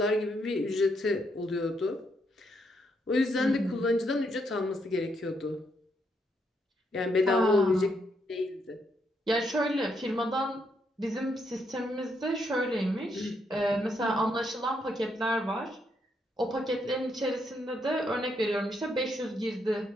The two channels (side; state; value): both; normal; correlation 0.77